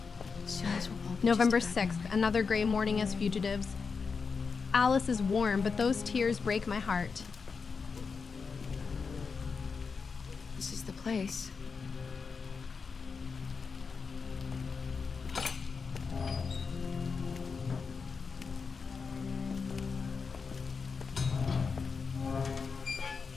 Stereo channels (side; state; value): right; quieter; 5.2 dB